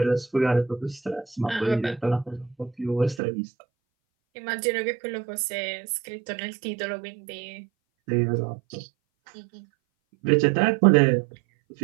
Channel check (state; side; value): drops out; left; at 3.2 s